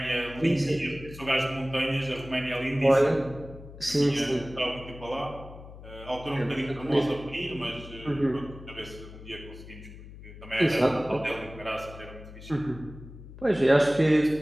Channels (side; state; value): left; noise; hum, 16 dB below the sound